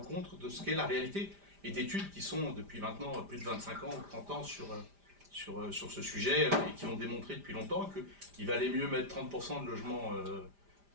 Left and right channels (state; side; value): late; left; 5.0 ms